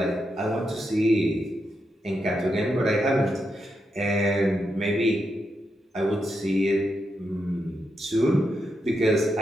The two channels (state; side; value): normal; both; correlation 0.84